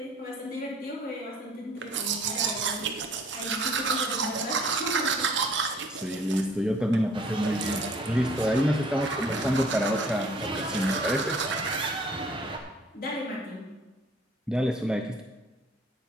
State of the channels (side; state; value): both; normal; correlation 0.55